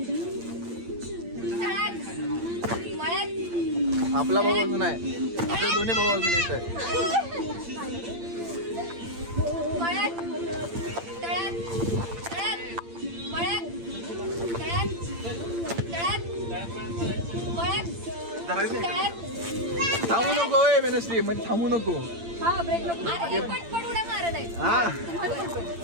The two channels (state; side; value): late; left; 8.8 ms